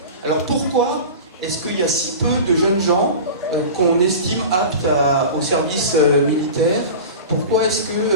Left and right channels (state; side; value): inverted; both; correlation -0.33